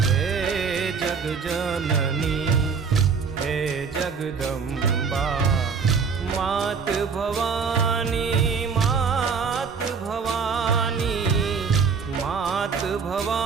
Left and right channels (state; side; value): quieter; left; 5.7 dB